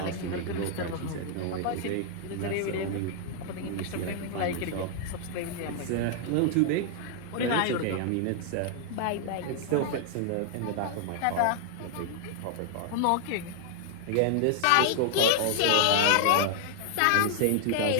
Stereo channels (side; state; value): both; different; correlation 0.00